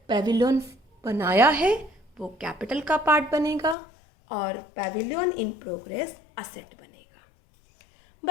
पेविलियन बनाया है वो कैपिटल का पार्ट बनेगा और पेविलियन इन प्रोग्रेस असेट बनेगा।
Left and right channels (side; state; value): right; drops out; at 3.8 s